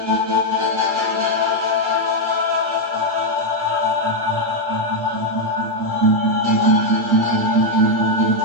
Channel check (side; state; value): left; late; 7.8 ms